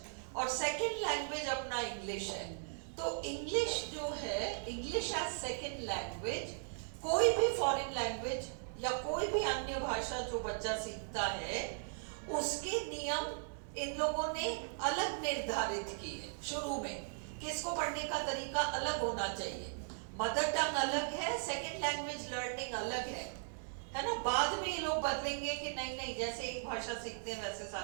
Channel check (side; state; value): left; silent; digital silence